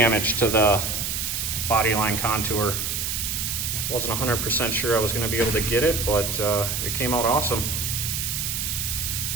to the body line contour. Wasn't 100% sure I was going to be able to get it, but it came out awesome.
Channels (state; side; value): noise; right; hiss, 2 dB below the sound